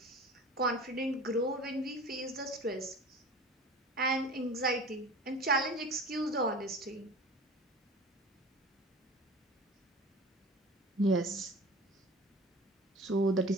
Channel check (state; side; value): normal; both; correlation 0.38